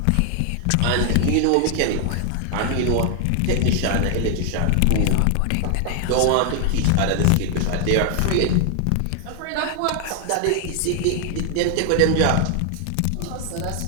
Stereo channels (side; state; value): both; different; correlation 0.00